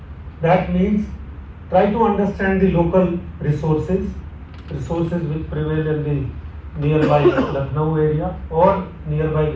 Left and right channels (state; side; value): identical; both; correlation 1.00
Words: That means try to understand the local resources which prevail in the nearby Lucknow area or nearby